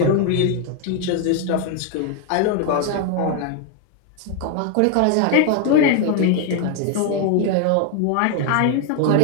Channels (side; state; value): both; different; correlation 0.01